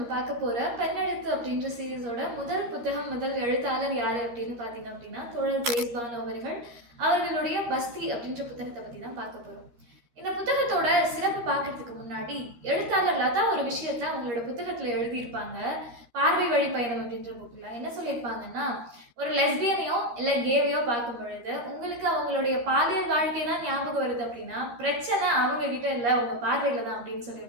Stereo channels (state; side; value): late; left; 13 ms